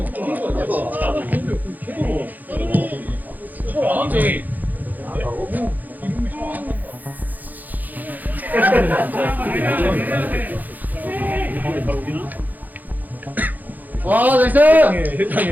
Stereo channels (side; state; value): left; late; 0.083 ms